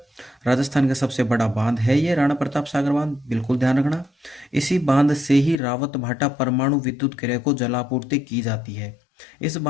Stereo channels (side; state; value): right; drops out; at 5.6 s